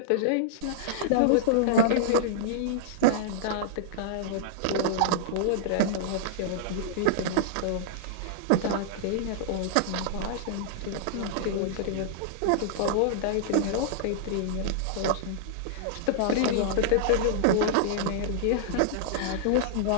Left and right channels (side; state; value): both; different; correlation -0.02